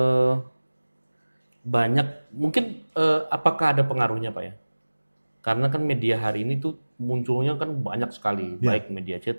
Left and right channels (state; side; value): inverted; both; correlation -1.00